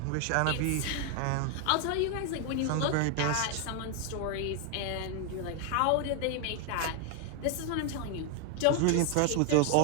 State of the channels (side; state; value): both; different; correlation 0.01